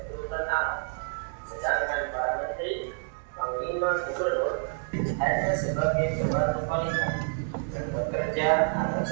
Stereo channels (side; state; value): left; silent; digital silence